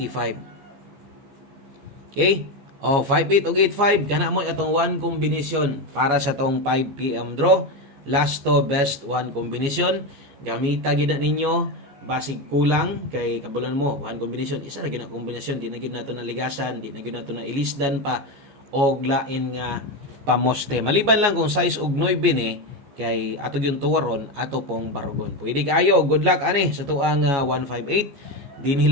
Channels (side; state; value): left; late; 14 ms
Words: Okay, o 58 og 85 kana mo atong one combination para sa tong 5 PM draw. Last to best one combination, gamita gid ninyo basig kulang kay kabulan mo one combination, isa ra gyud na kombinasyon, di na gyud nato na ligasan, di na gyud nato na ilisdan pa og lain nga pamoste. Maliban lang kung size og 9 ni kay ato yung tuwaron ato pong barugon. Pwede kayo, good luck ani sa tuang 158. Dinhi